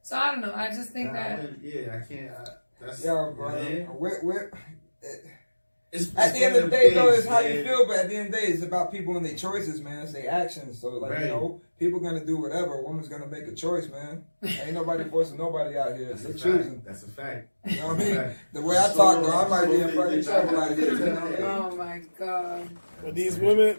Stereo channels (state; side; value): inverted; both; correlation -1.00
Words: so I don't know. I just think that. I can't. That's at the end of the day, though, it's how you feel. But at the end of the day, it's about people and their choices, man. It's their actions. So, like, people gonna do whatever. A woman's gonna make a choice, man. Ain't nobody forcing nobody out here. They're choosing. That's a fact. You know what I mean? The way I talk, though, I might be in fucking trouble out here. You know what I mean? Oh my god. Well, these